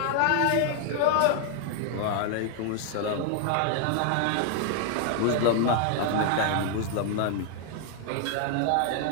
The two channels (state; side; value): different; both; correlation 0.00